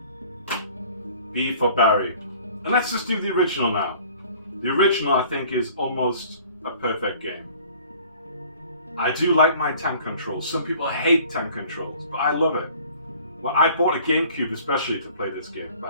B for Barry. And let's just do the original now. The original, I think, is almost a perfect game. I do like my tank controls. Some people hate tank controls, but I love it. Well, I bought a GameCube especially to play this game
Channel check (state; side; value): inverted; both; correlation -0.51